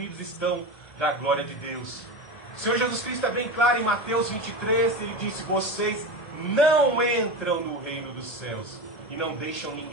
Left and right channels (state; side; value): late; right; 1.7 ms